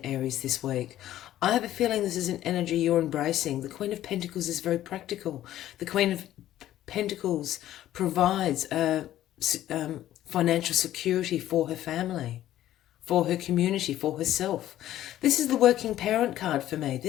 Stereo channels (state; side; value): quieter; right; 13.1 dB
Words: Aries, this week. I have a feeling this is an energy you're embracing. The Queen of Pentacles is very practical. The Queen of Pentacles provides financial security for her family, for her community, for herself. This is the working parent card for me.